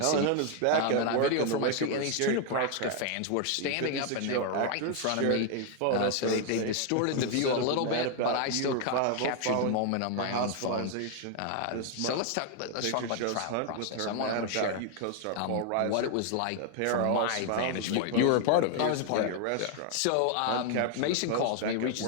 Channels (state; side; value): different; both; correlation 0.00